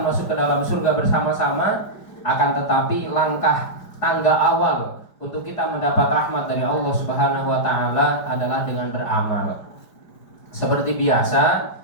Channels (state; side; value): late; right; 5.0 ms